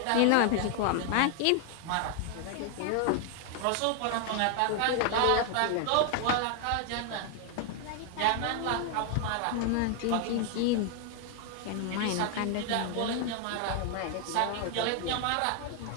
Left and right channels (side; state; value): both; different; correlation 0.00